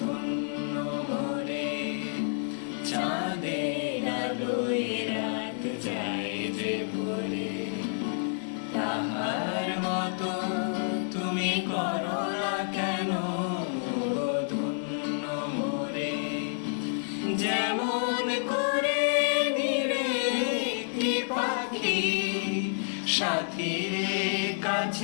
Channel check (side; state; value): right; silent; digital silence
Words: মোরে। চাঁদের আলোয় রাত যায় যে ভুলে, তাহার মতো তুমি করো না কেন গো ধন্য মোরে। যেমন করে পাখি সাথীর